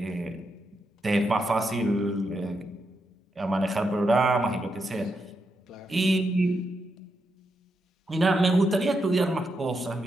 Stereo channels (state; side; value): normal; both; correlation 0.83